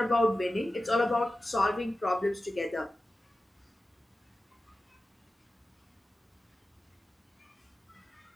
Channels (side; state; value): both; normal; correlation 0.94